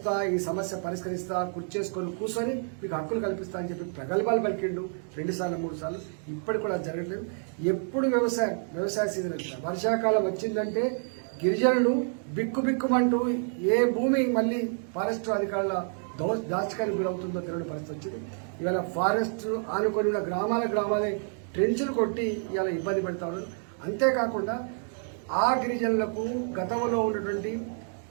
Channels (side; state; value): left; silent; 55 dB below the other